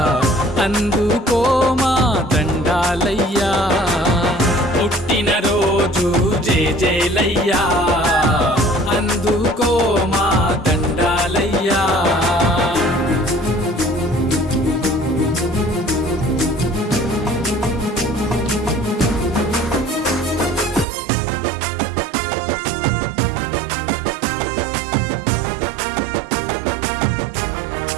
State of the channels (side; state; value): left; drops out; at 20.9 s